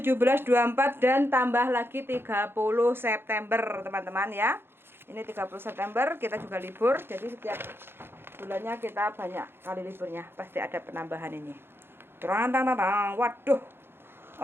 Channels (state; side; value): late; left; 0.11 ms